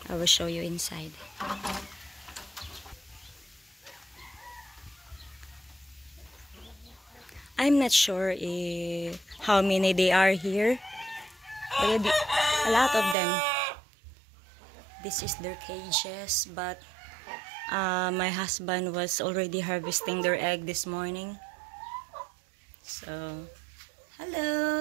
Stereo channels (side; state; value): left; drops out; at 13.2 s